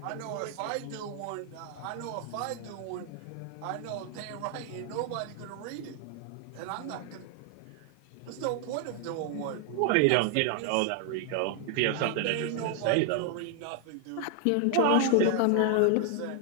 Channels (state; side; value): different; both; correlation 0.00